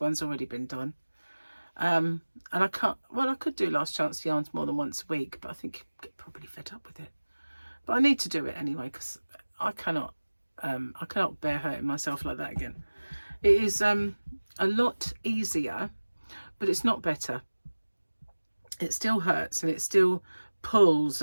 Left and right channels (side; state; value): both; inverted; correlation -1.00